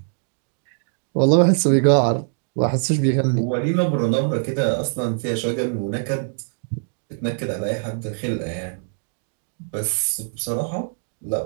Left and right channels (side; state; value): left; silent; digital silence